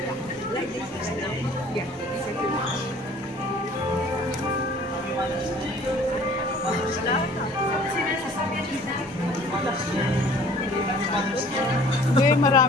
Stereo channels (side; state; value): both; normal; correlation 0.52